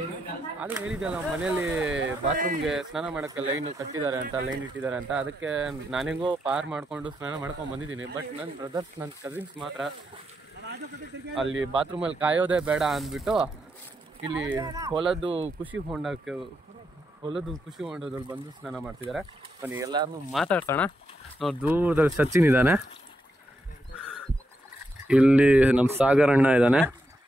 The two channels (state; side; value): normal; both; correlation 0.82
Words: ಅದು ಹೇಳಿದ್ದಲ್ಲ ಮನೇಲಿ ಬಾತ್ರೂಮ್ಗೆ ಸ್ನಾನ ಮಾಡೋಕ್ಕೆ ಲೈನ್ ಕಟ್ಟಿದ್ದಾರೆ ಅಂತ, ಲೈನ್ ಇಟ್ಟಿದ್ದಾರೆ ಅಂತ. ಅದಕ್ಕೆ ನಾನೆಂಗೋ ಪಾರ್ ಮಾಡಿಕೊಂಡು ಸ್ನಾನ ಮಾಡ್ಕೊಂಡು ಬಂದಿದ್ದೀನಿ. ಬಟ್ ನನ್ನ ಬ್ರದರ್ಸ್, ನನ್ನ ಕಸಿನ್ಸ್ ಮಾತ್ರ ಅಲ್ಲಿ ಬಾತ್ರೂಮಲ್ಲಿ ಕಾಯೋದೇ ಬೇಡ ಅಂದ್ಬಿಟ್ಟು ಇಲ್ಲಿ ಹೊಲದ್ದು ಖುಷಿ ಹೊಂಡದಲ್ಲಿ ಬಂದು ಸ್ನಾನ ಮಾಡ್ತಿದ್ದಾರೆ. ಬನ್ನಿ ಎಲ್ಲಾರನ್ನೂ ಮಾತಾಡ್ಸೋಣ. ನಾವು ದೂರದಲ್ಲಿ ಸಚಿನ್ ಇದ್ದಾನೆ, ಇಲ್ಲಿ ನಮ್ಮ ಸಾಗರ್ ಅಣ್ಣ ಇದ್ದಾನೆ,